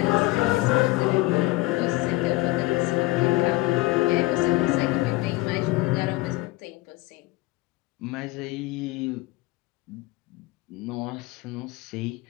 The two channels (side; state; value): right; quieter; 20.2 dB